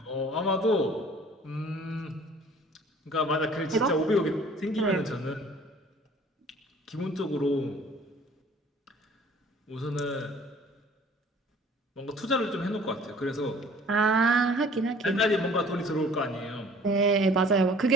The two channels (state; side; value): normal; both; correlation 0.51